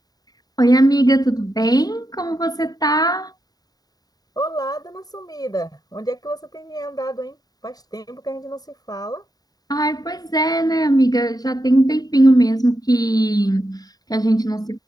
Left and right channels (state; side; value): late; right; 0.18 ms